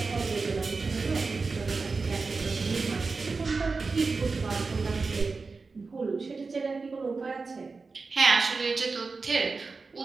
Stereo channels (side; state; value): left; quieter; 4.2 dB